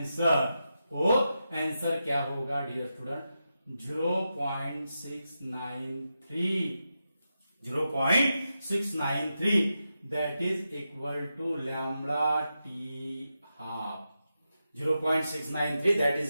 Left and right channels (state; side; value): inverted; both; correlation -0.88